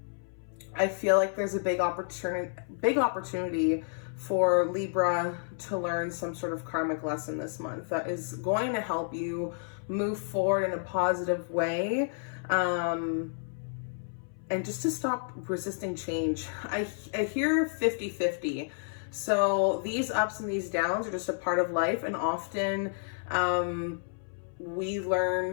feel like there's a big opportunity for Libra to learn some sort of karmic lesson this month that is going to help you move forward in a positive way. And just to stop resisting change. I hear 50-50. So these ups and these downs are just a part of life, and often we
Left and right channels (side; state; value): right; silent; 57 dB below the other